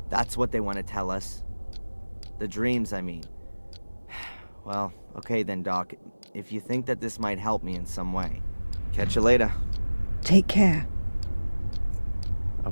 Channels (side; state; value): both; inverted; correlation -1.00